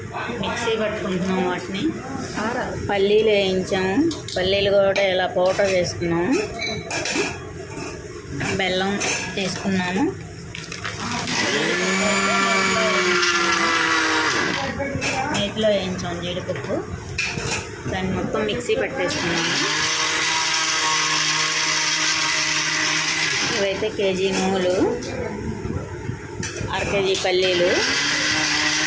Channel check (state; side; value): identical; both; correlation 1.00